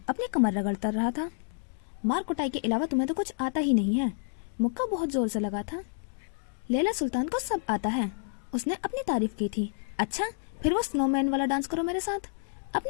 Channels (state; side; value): silent; right; digital silence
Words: अपनी कमर रगड़ता रहा था। मार कुटाई के अलावा तुम्हें तो कुछ आता ही नहीं है। मुक्का बहुत जोर से लगा था। लैला सुल्तान को सब आता है, उसने अपनी तारीफ की थी। अच्छा, फिर वो स्नोमैन वाला डांस करो मेरे साथ।